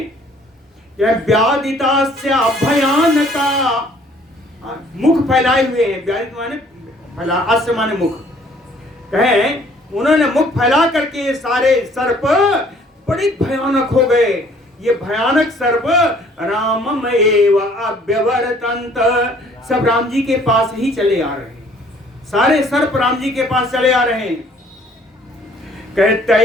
यह व्याधितास्य भयानका, मुख फैलाए हुए हैं, व्याधित माने फैला, अस्य माने मुख, कहें उन्होंने मुख फैला करके ये सारे सर्प बड़ी भयानक हो गए। ये भयानक सर्प रामम एव अभ्यवर्तन्त, सब राम जी के पास ही चले आ रहे हैं, सारे सर्प राम जी के पास चले आ रहे हैं।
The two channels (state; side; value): normal; both; correlation 0.58